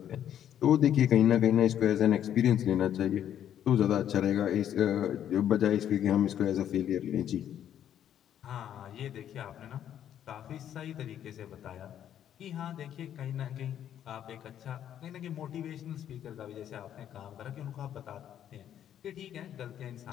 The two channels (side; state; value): right; quieter; 10.3 dB